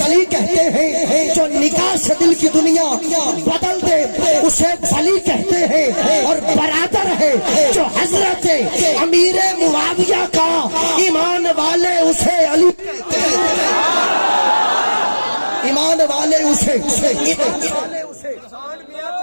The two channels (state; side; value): inverted; both; correlation -1.00